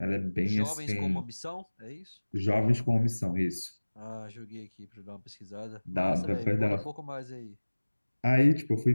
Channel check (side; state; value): both; inverted; correlation -1.00